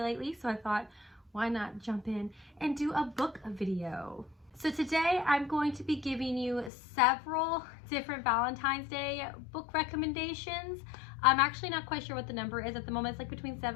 so I thought, why not jump in and do a book video? So today I'm going to be giving you several different Valentine's Day book recommendations. I'm actually not quite sure what the number is at the moment. It's like between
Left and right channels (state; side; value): drops out; right; at 6.7 s